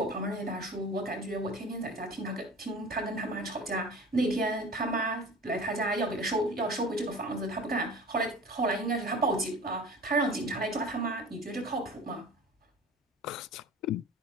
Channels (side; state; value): both; normal; correlation 0.39